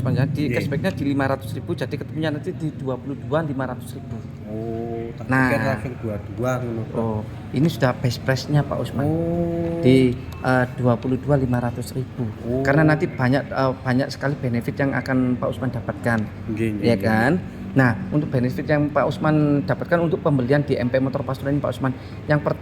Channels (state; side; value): identical; both; correlation 1.00